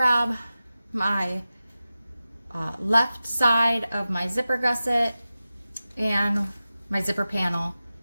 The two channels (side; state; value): both; inverted; correlation -0.95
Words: my left side of my zipper gusset and my zipper panel